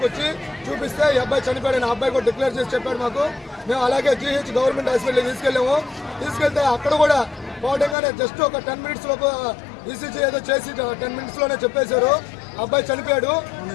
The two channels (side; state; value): right; drops out; at 8.0 s